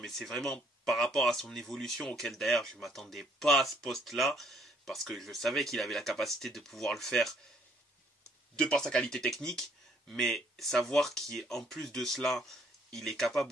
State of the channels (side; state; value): both; normal; correlation 0.64